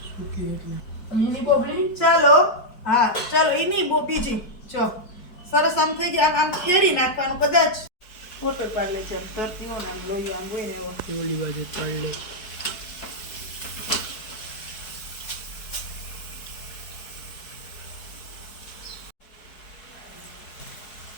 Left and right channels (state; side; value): late; right; 4.6 ms